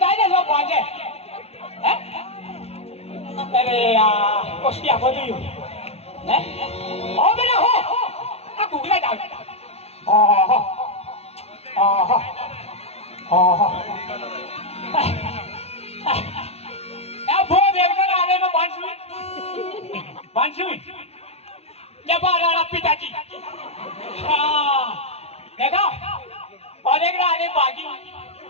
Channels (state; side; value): late; right; 0.30 ms